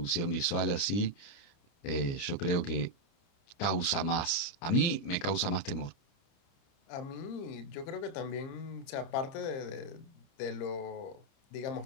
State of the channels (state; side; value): late; right; 29 ms